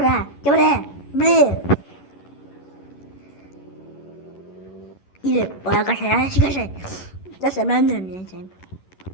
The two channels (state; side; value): late; right; 11 ms